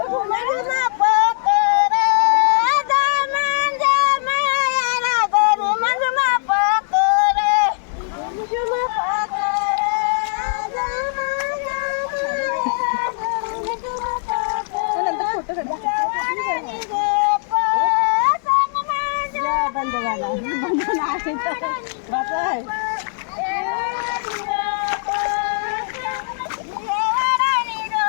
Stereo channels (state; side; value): silent; right; digital silence